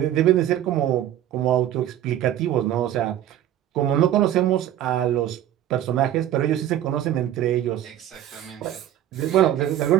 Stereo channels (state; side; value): quieter; left; 11.9 dB